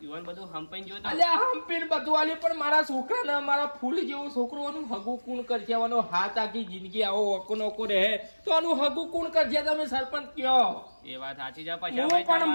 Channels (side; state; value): both; inverted; correlation -1.00